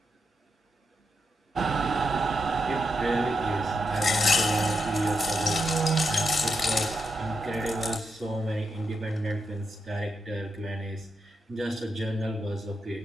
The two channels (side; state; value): both; normal; correlation 0.83